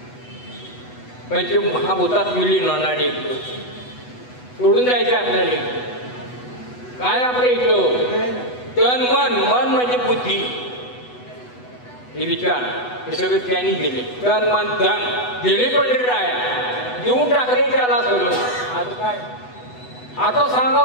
म्हणजे महाभूतात विलीन होणारे सोडून जायचे आपल्याला काय आपल्या इथं तन मन मन म्हणजे बुद्धी हे विचार हे सगळे त्यांनी दिले तन मन धन दिले पंढरीराया देऊन टाकले त्याला सगळं आता काय आता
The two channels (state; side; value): late; right; 8.1 ms